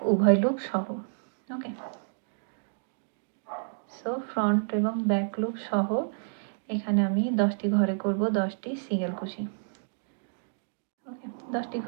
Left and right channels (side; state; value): left; silent; digital silence